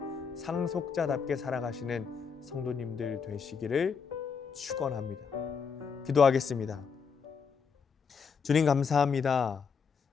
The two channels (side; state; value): right; quieter; 6.1 dB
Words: 상속자답게 살아가시는 성도님들 되시기를 축원합니다. 기도하겠습니다. 주님 감사합니다.